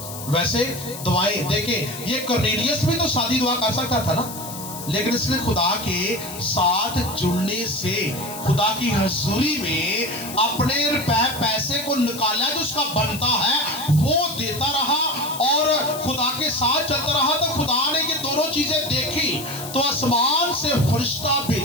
वैसे दुआएं देखें, ये कर्नेलियस भी तो सादी दुआ कर सकता था ना, लेकिन इसने खुदा के साथ जुड़ने से खुदा की हजूरी में अपने रुपए पैसे को निकाला जो उसका बनता है वो देता रहा और खुदा के साथ चलता रहा। तो खुदा ने ये दोनों चीजें देखी तो आसमान से फरिश्ता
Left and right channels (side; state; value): left; noise; hiss, 11 dB below the sound